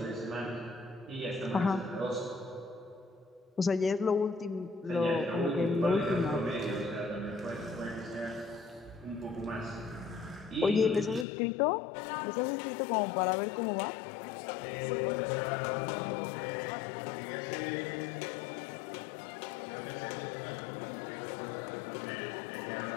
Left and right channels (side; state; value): right; drops out; at 11.2 s